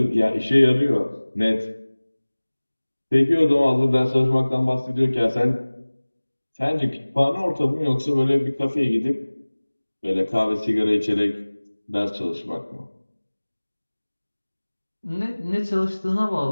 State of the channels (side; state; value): both; inverted; correlation -1.00